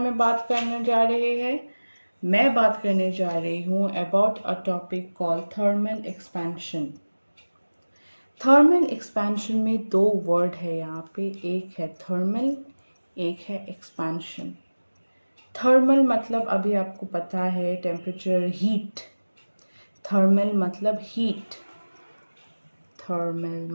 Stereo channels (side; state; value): both; inverted; correlation -1.00